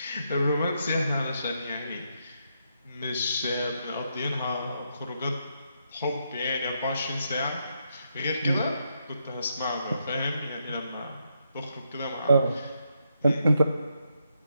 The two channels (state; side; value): inverted; both; correlation -0.80